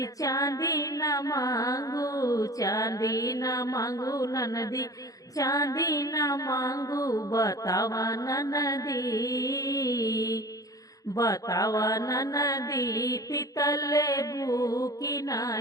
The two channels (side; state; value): right; late; 0.17 ms